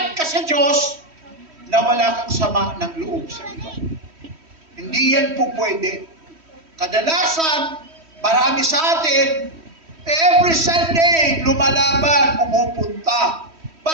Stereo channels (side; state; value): left; late; 3.1 ms